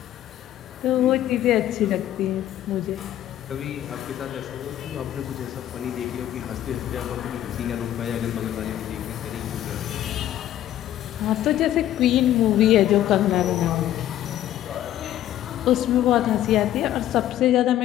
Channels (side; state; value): right; quieter; 12.4 dB